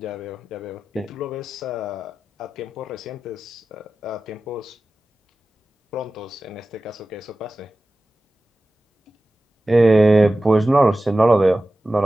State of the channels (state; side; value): normal; both; correlation 0.95